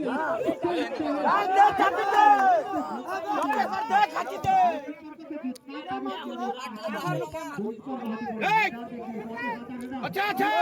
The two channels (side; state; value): both; identical; correlation 1.00